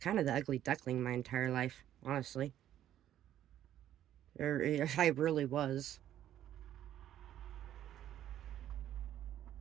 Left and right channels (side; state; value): left; quieter; 11.6 dB